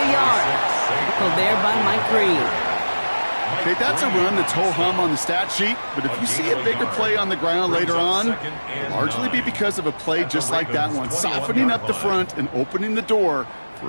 yard. Tackled there by Mike Green. Okay, that's a run that's ho-hum on the stat sheet, but if you see a bigger play on the ground later on, it'll largely be because of a play just like that one, softening up the front and opening the door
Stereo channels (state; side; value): inverted; both; correlation -1.00